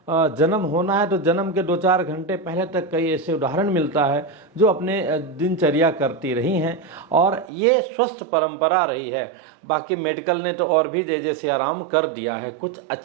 जन्म होना है तो जन्म के 2-4 घंटे पहले तक कई ऐसे उदाहरण मिलता है जो अपने दिनचर्या करती रही हैं और ये स्वस्थ परंपरा रही है। बाकी मेडिकल ने तो और भी जैसे आराम कर दिया है, कुछ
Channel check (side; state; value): left; drops out; at 7.5 s